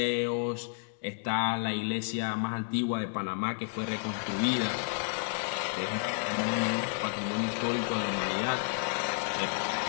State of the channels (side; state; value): right; silent; 57 dB below the other